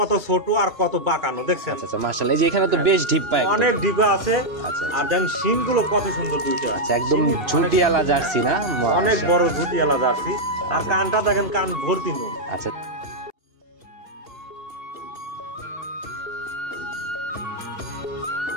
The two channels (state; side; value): late; left; 2.8 ms